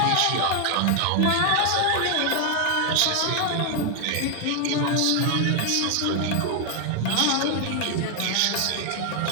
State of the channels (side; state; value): both; different; correlation 0.00